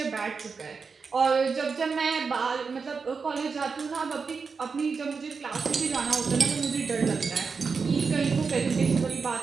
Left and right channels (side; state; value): left; quieter; 5.1 dB